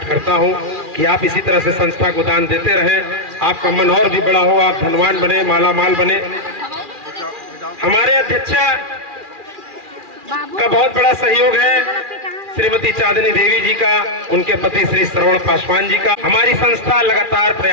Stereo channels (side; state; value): left; late; 2.4 ms